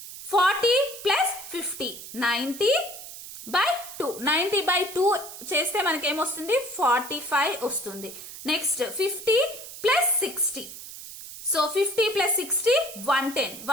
40 ప్లస్ 50 90 బై 2. 90 బై 2 చేస్తే మనకి ఏమొస్తుంది? 45 వస్తుంది. Next 50 plus 60. So 50 plus 60 110.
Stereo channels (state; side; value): noise; right; hiss, 13 dB below the sound